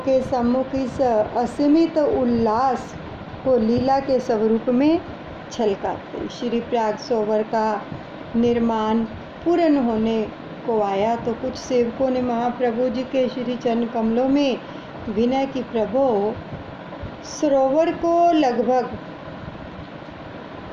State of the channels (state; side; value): identical; both; correlation 1.00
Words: सम्मुख इस असीमित उल्लास को लीला के स्वरूप में छलकाते। श्री प्रयाग सरोवर का निर्माण पूर्ण होने को आया तो कुछ सेवकों ने महाप्रभु जी के श्री चरण कमलों में विनय की, प्रभु सरोवर को लगभग